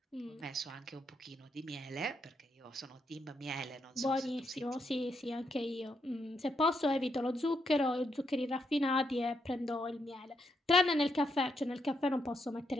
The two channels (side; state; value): both; normal; correlation 0.79